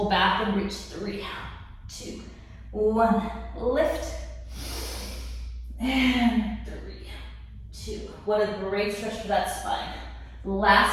back and reach, 3, 2, 1. Lift and 3, 2. What a great stretch for that spine.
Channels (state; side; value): identical; both; correlation 1.00